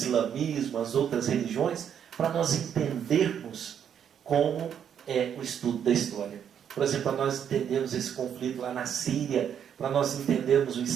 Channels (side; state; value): left; quieter; 8.6 dB